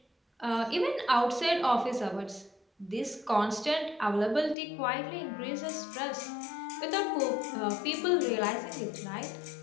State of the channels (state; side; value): drops out; right; at 4.5 s